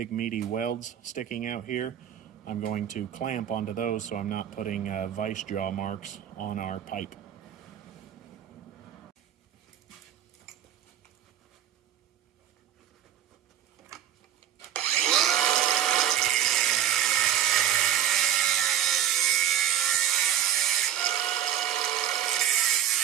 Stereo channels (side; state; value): left; quieter; 10.8 dB